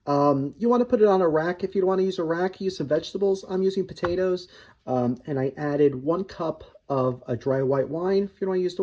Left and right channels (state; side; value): identical; both; correlation 1.00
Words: You want to put it on a rack. If you don't want to use a rack, use some vegetables. I'm using potatoes, and I added 1 cup of a dry white wine. If you don't want to use the